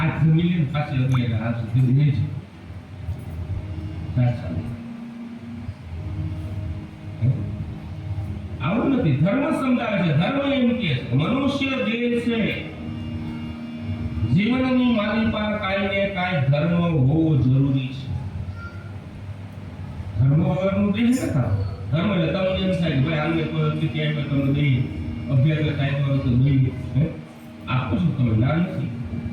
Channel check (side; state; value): both; identical; correlation 1.00